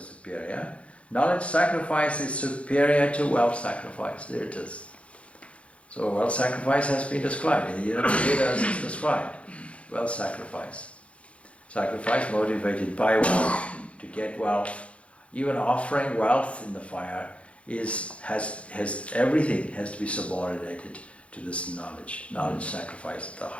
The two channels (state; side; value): late; right; 0.062 ms